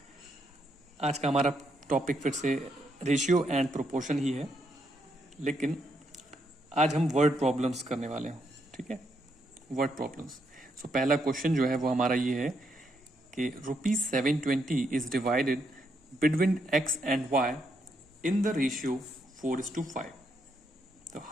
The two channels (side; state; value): both; normal; correlation 0.77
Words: आज का हमारा टॉपिक फिर से रेशियो एंड प्रोपोर्शन ही है, लेकिन आज हम वर्ड प्रॉब्लम्स करने वाले हैं। ठीक है, वर्ड प्रॉब्लम्स। पहला क्वेश्चन जो है वो हमारा ये है कि ₹720 is divided between x and y in the ratio 4:5। तो